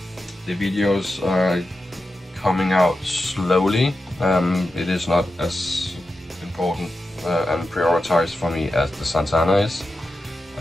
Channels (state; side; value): normal; both; correlation 0.90